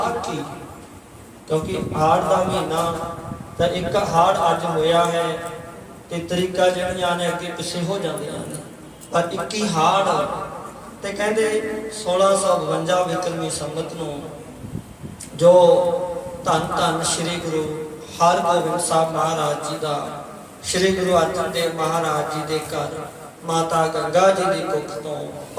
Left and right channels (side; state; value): both; identical; correlation 1.00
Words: ਕਿਉਂਕਿ ਹਾੜ ਦਾ ਮਹੀਨਾ ਤਾਂ ਇੱਕ ਹਾੜ ਅੱਜ ਹੋਇਆ ਹੈ ਤੇ ਤਰੀਕਾ ਜਿਹੜੀਆਂ ਨੇ ਅੱਗੇ ਪਿੱਛੇ ਹੋ ਜਾਂਦੀਆਂ ਨੇ, ਪਰ 21 ਹਾੜ। ਤੇ ਕਹਿੰਦੇ 1652 ਬਿਕਰਮੀ ਸੰਮਤ ਨੂੰ ਜੋ ਧੰਨ ਧੰਨ ਸ੍ਰੀ ਗੁਰੂ ਹਰਗੋਬਿੰਦ ਸਾਹਿਬ ਮਹਾਰਾਜ ਜੀ ਦਾ, ਸ੍ਰੀ ਗੁਰੂ ਅਰਜਨ ਦੇਵ ਮਹਾਰਾਜ ਜੀ ਦੇ ਘਰ ਮਾਤਾ ਗੰਗਾ ਜੀ ਦੀ ਕੁੱਖ ਤੋਂ